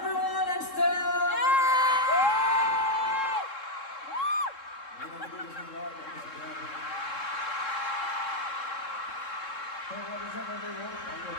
I'm Stella! Hey, what is up everyone? I'm your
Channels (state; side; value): late; right; 3.7 ms